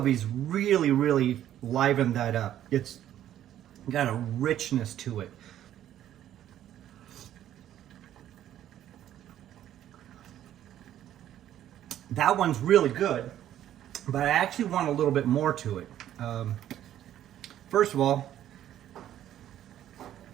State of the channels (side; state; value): left; quieter; 11.7 dB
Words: really, really liven that up. It's got a richness to it. That one's really good, but I actually want a little bit more to it. First of all,